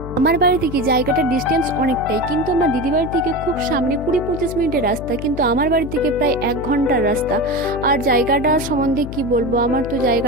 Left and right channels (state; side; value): noise; left; hum, 9 dB below the sound